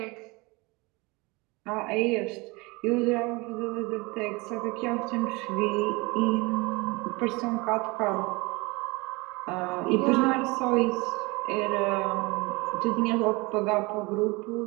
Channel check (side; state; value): left; quieter; 25.2 dB